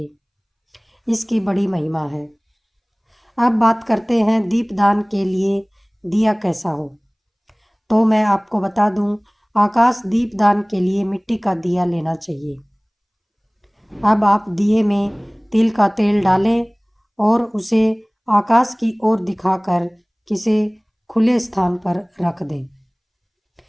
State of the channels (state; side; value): identical; both; correlation 1.00